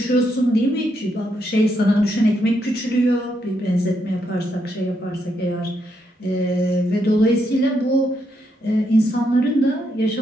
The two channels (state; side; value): normal; both; correlation 0.79